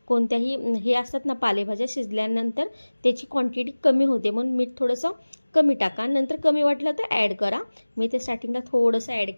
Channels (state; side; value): inverted; both; correlation -1.00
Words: कोणत्याही हे असतात ना पालेभाज्या, शिजल्यानंतर त्याची क्वांटिटी कमी होते, म्हणून मीठ थोडंसं कमी टाका, नंतर कमी वाटलं तर ॲड करा। मी ते स्टार्टिंगला थोडंसं ॲड